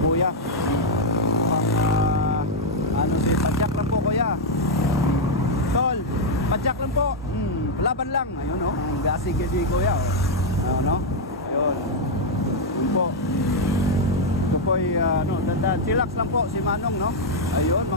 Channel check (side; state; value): both; normal; correlation -0.01